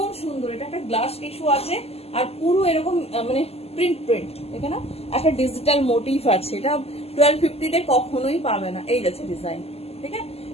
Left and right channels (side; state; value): right; late; 0.29 ms